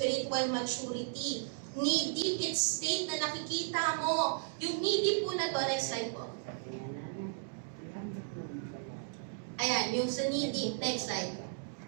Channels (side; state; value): left; silent; digital silence